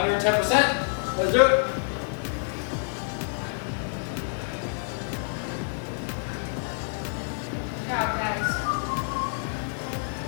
Let's do it. Good job, guys.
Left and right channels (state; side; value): silent; right; digital silence